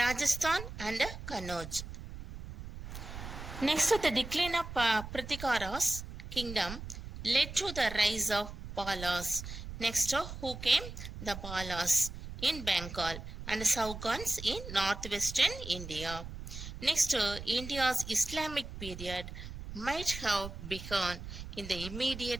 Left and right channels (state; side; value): noise; right; rumble, 10 dB below the sound